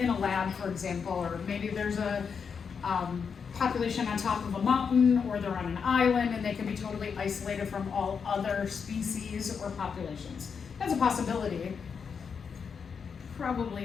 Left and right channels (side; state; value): right; quieter; 6.2 dB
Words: a lab, for example, or maybe there's a population on top of a mountain, or they're on an island and they can be totally isolated from all other species or populations. That's a possibility.